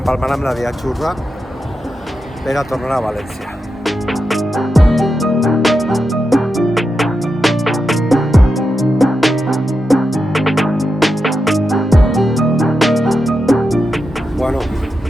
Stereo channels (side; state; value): both; normal; correlation 0.88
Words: amb la via Xurra per a tornar a València. Bueno,